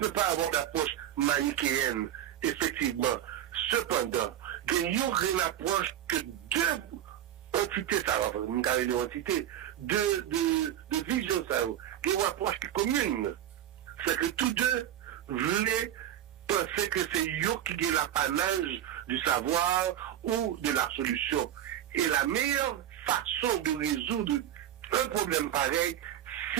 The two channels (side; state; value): left; quieter; 11.3 dB